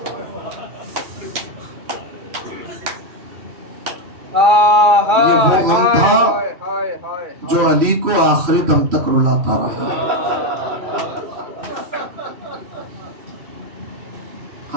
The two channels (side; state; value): left; late; 2.4 ms